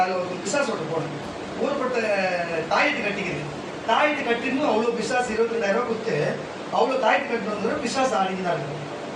ஒரு பிசாசு ஓட்டு போனேன். ஊர்பட்ட தாயத்து கட்டிக்குது. தாயத்து கட்டின்னு அவ்வளோ பிசாசு 22,000 ரூபாய் கொடுத்து அவ்வளோ தாயத்து கட்டிட்டு வந்து பிசாசு ஆடின்னு தான் இருக்கு.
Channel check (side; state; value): both; identical; correlation 1.00